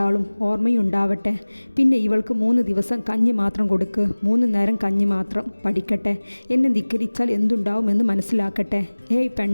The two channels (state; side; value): inverted; both; correlation -1.00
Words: ഓർമ്മയുണ്ടാവട്ടെ. പിന്നെ ഇവൾക്ക് 3 ദിവസം കഞ്ഞി മാത്രം കൊടുക്ക്. 3 നേരം കഞ്ഞി മാത്രം. പഠിക്കട്ടെ. എന്നെ ധിക്കരിച്ചാൽ എന്തുണ്ടാവുമെന്ന് മനസ്സിലാക്കട്ടെ. ഏയ്